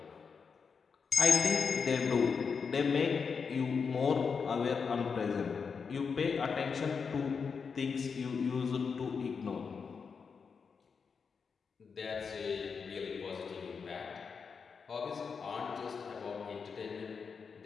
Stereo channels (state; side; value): quieter; right; 5.7 dB